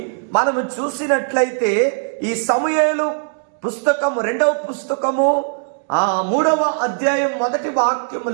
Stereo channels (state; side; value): silent; left; digital silence